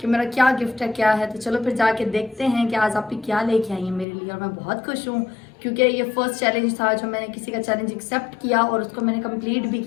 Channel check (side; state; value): right; drops out; at 4.0 s